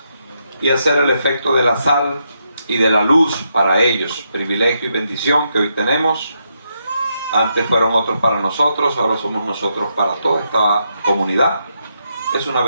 y hacer el efecto de la sal y de la luz para ellos. Privilegio y bendición que hoy tenemos. Antes fueron otros para nosotros, ahora somos nosotros para toda esta comunidad. Es una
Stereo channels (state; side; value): inverted; both; correlation -0.80